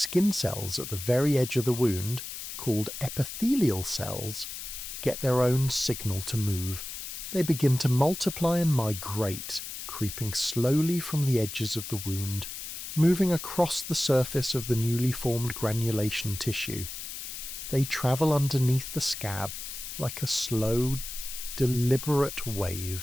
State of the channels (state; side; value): noise; left; hiss, 8 dB below the sound